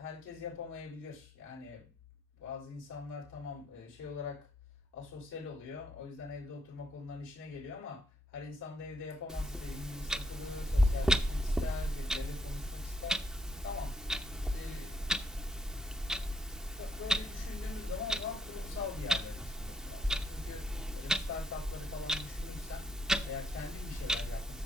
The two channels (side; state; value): both; normal; correlation 0.73